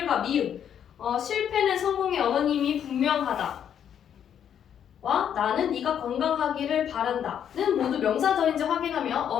미음. 실패는 성공의 어머님이 분명하다. 와 나는 네가 건강하기를 바란다는 모두 명사절인지 확인하며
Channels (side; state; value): right; quieter; 9.0 dB